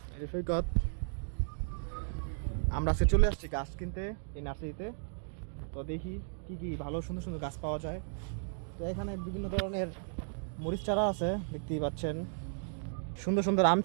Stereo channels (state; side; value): silent; left; 55 dB below the other